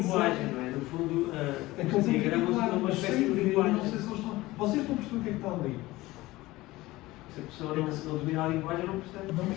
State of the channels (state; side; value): quieter; right; 18.9 dB